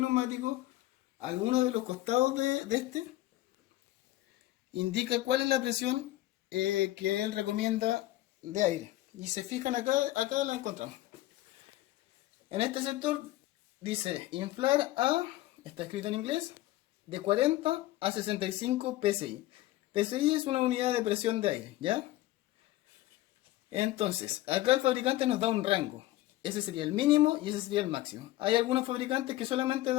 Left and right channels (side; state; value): right; quieter; 16.2 dB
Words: neumático, alguno de los costados de este, indica cuál es la presión que él recomienda de aire. Y se fijan acá la encontramos. En este sector dice inflar a, está escrito en inglés, de 40 a 65 psi. PSI es una unidad de presión de aire, ¿ya? Entonces, acá el fabricante nos da un rango. Ese sería el mínimo y ese sería el máximo. Hay algunos fabricantes que solamente